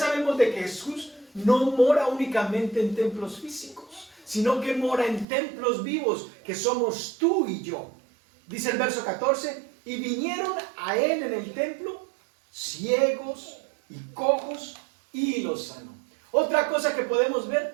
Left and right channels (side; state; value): left; drops out; at 5.2 s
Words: de que Jesús no mora únicamente en templos físicos, sino que mora en templos vivos, que somos tú y yo. Dice el verso 14, y vinieron a él en el templo ciegos y cojos y los sanó. Otra cosa que podemos